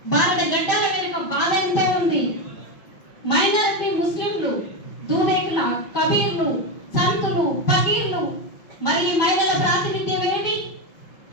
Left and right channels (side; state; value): right; late; 5.6 ms